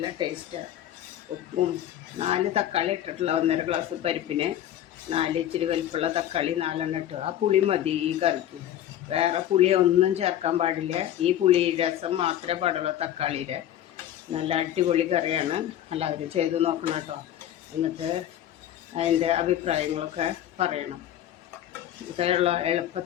ടേസ്റ്റാണ്. ഉപ്പും 4 തക്കാളി ഇട്ടിട്ടുള്ള 1.5 ഗ്ലാസ് പരിപ്പിന് 4 ഇച്ചിരി വലിപ്പമുള്ള തക്കാളി 4 ഇട്ടു. ആ പുളി മതി ഈ കറിക്ക്. വേറെ പുളി ഒന്നും ചേർക്കാൻ പാടില്ല. ഈ പുളി രസം മാത്രമേ പാടുള്ളൂ തക്കാളിയുടെ. നല്ല അടിപൊളി കറിയാണ്. എല്ലാവരും ചെയ്ത് നോക്കണം കേട്ടോ. എന്നിട്ട് അതിൻ്റെ അഭിപ്രായങ്ങളൊക്കെ പറയണം. ഇതുള്ള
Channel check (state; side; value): quieter; right; 11.7 dB